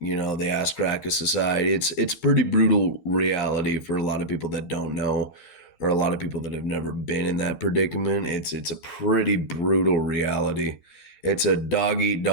ass crack of society. It's pretty brutal reality for a lot of people that don't know, or a lot of people that have never been in that predicament. It's a pretty brutal reality. It's a dog eat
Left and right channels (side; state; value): right; late; 11 ms